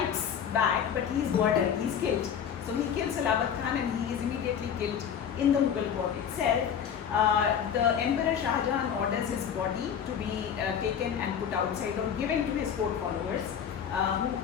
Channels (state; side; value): quieter; right; 8.1 dB